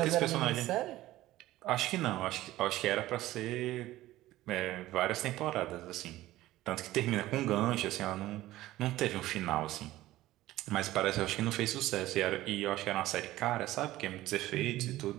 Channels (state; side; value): quieter; left; 16.0 dB